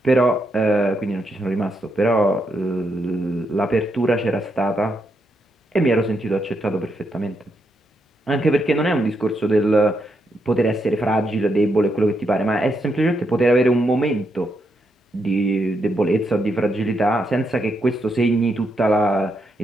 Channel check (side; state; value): both; normal; correlation 0.80